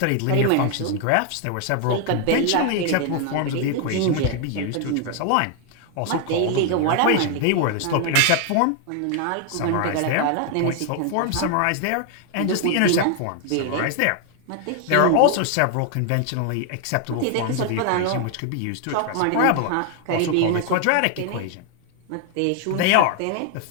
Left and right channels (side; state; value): both; different; correlation 0.00